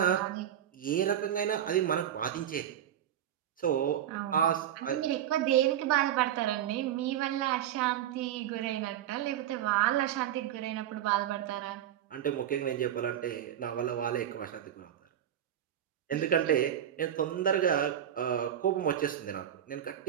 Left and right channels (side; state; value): left; quieter; 10.6 dB